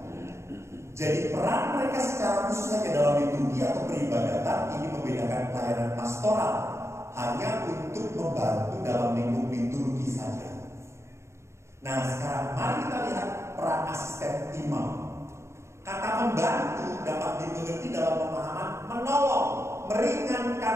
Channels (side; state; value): left; late; 0.13 ms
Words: Jadi peran mereka secara khusus hanya dalam liturgi atau peribadatan ini membedakan pelayanan pastoral hanya untuk membantu dalam lingkup liturgi saja. Nah sekarang mari kita lihat peran asisten imam. Kata membantu dapat dimengerti dalam pemahaman menolong,